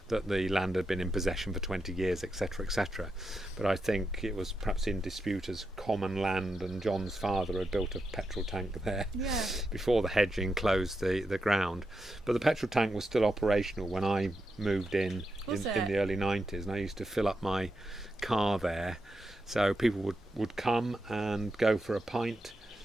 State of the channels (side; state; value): both; normal; correlation 0.87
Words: that the land had been in possession for 20 years, etc., etc. But I think it was perhaps in dispute as common land, and John's father had built a petrol tank there before the hedge enclosed the ground. But the petrol tank was still operational when I moved in the early 90s, and I used to fill up my car there. So people would come and go for a pint